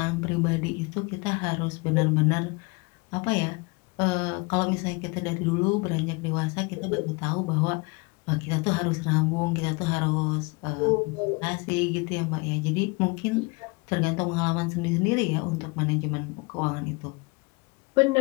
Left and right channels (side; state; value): right; quieter; 28.0 dB